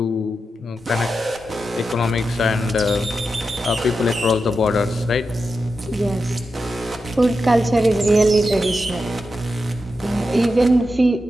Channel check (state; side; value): normal; both; correlation 0.89